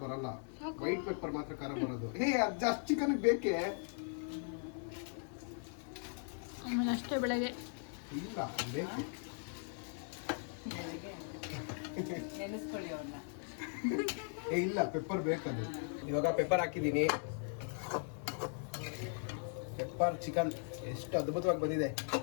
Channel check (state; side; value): silent; right; 52 dB below the other